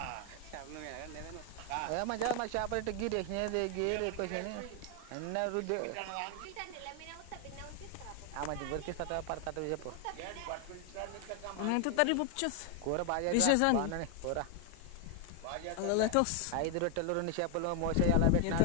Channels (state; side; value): different; both; correlation 0.01